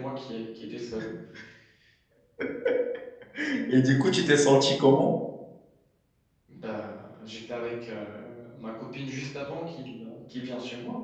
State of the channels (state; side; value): identical; both; correlation 1.00